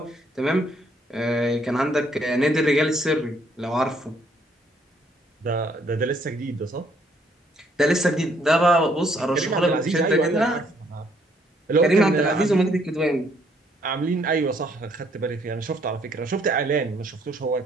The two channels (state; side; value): normal; both; correlation 0.67